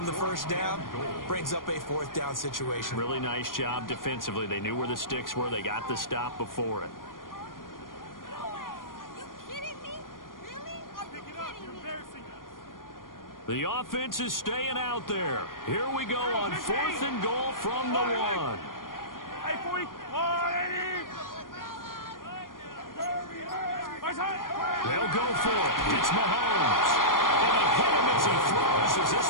the 1st down brings up a 4th down situation. Really nice job defensively. They knew where the sticks were. They got the stop before it. The offense is staying out there. Here we go on 4th and goal from the 1. They'll go for it. It's Mahomes. And he hit him as he throws, as this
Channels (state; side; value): late; right; 0.90 ms